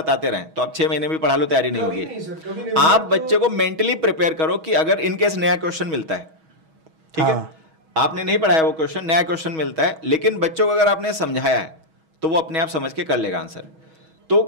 रहें तो आप 6 महीने भी पढ़ा लो, तैयारी नहीं होगी। आप बच्चे को मेंटली प्रिपेयर करो कि अगर इनकेस नया क्वेश्चन मिलता है, ठीक है, आपने नहीं पढ़ाया वो क्वेश्चन, नया क्वेश्चन मिलता है, लेकिन बच्चों को अगर आपने समझाया है तो वो अपने आप समझ के कर लेगा आंसर। तो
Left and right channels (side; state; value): left; late; 6.3 ms